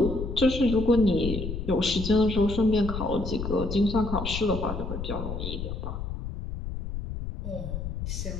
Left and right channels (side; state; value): left; noise; rumble, 5 dB below the sound